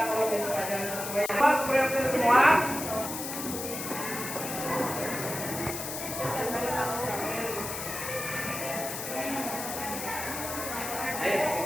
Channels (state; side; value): noise; left; hiss, 6 dB below the sound